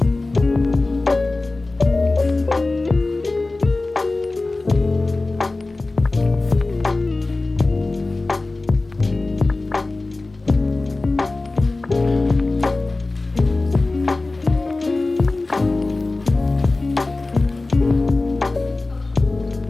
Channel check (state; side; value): quieter; right; 3.2 dB